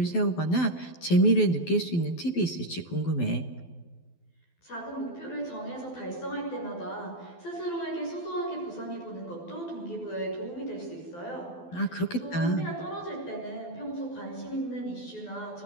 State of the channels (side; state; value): right; late; 12 ms